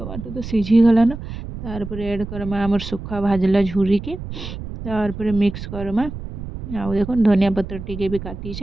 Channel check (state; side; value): noise; right; rumble, 9 dB below the sound